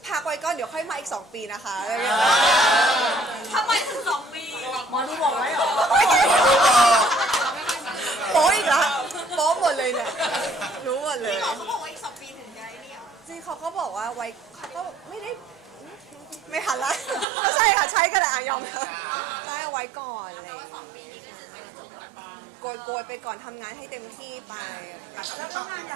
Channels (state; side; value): drops out; left; at 17.2 s